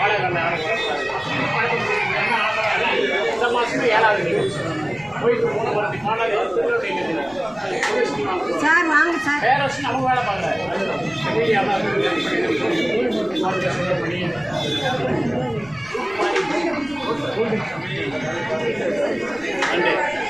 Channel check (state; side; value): noise; right; rumble, 24 dB below the sound